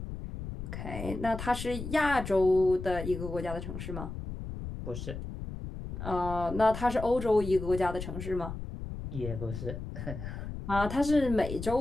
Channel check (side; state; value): left; noise; rumble, 8 dB below the sound